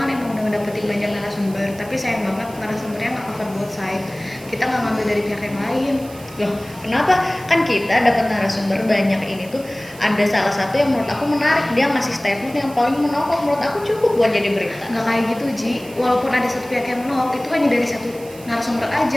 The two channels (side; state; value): right; noise; hiss, 20 dB below the sound